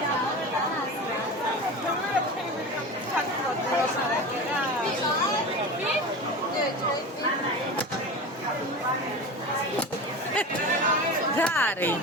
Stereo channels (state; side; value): normal; both; correlation 0.29